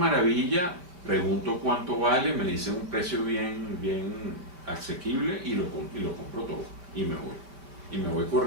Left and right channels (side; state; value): left; late; 5.2 ms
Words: pregunto cuánto vale, me dicen un precio bien asequible y lo compro todo y me voy. Y me voy